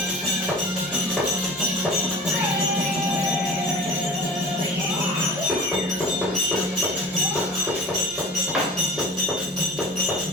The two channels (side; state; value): both; normal; correlation 0.39